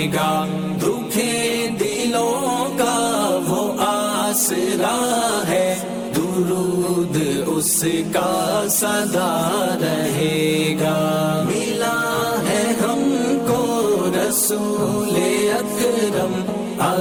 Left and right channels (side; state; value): both; identical; correlation 1.00